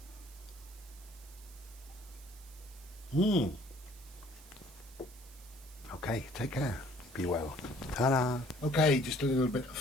Okay, take care. Be well. Ta-da. Okay, just a little bit of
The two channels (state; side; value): noise; right; hiss, 21 dB below the sound